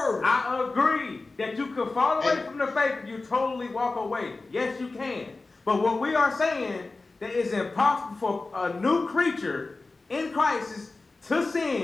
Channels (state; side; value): quieter; right; 3.5 dB